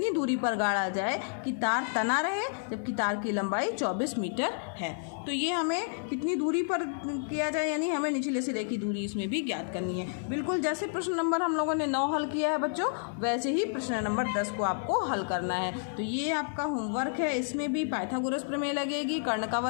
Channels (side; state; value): right; silent; 58 dB below the other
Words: दूरी पर गाड़ा जाए कि तार तना रहे, जबकि तार की लंबाई 24 मीटर है। तो ये हमें कितनी दूरी पर किया जाए, यानी हमें निचले सिरे की दूरी इसमें भी ज्ञात करनी है। बिल्कुल जैसे प्रश्न नंबर हम लोगों ने 9 हल किया है बच्चों, वैसे ही प्रश्न नंबर 10 को आपको हल करना है। तो ये आपका होमवर्क है, इसमें भी पाइथागोरस प्रमेय लगेगी, कर्ण का